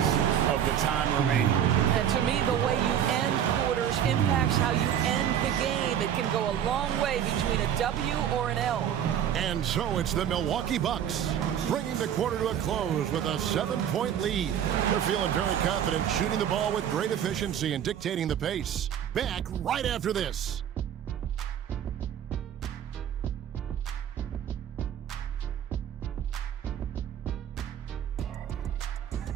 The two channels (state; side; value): quieter; left; 9.6 dB